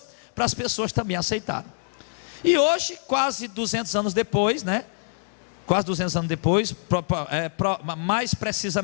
para as pessoas também aceitarem. E hoje, quase 200 anos depois, quase 200 anos depois, mais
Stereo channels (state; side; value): silent; right; digital silence